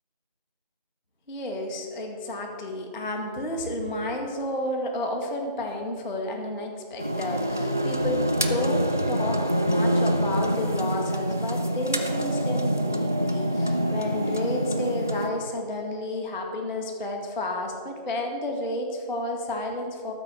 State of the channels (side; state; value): both; inverted; correlation -0.51